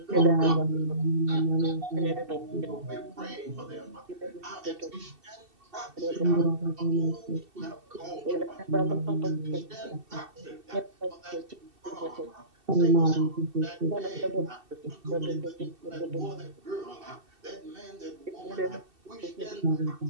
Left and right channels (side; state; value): left; late; 2.7 ms